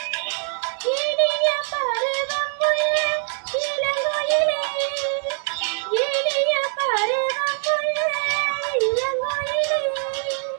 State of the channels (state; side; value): silent; left; 63 dB below the other